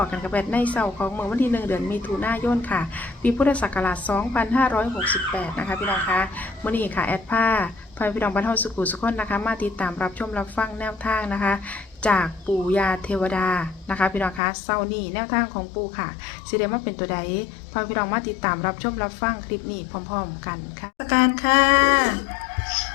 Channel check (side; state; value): right; drops out; at 14.4 s